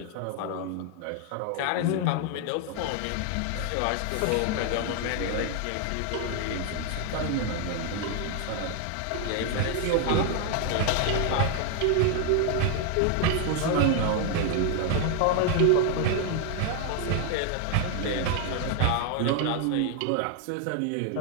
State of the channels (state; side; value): different; both; correlation 0.00